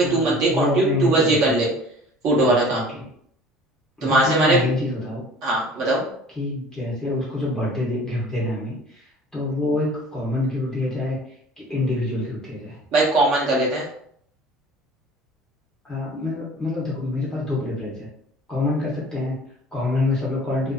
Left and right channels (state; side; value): normal; both; correlation 0.47